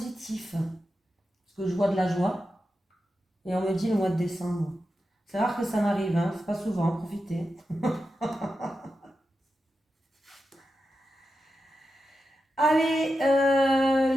Parce que je vois de la joie. Et on me dit le mois de décembre. C'est rare que ça m'arrive, hein. C'est pas souvent, profitez. Allez,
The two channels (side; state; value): both; normal; correlation 0.90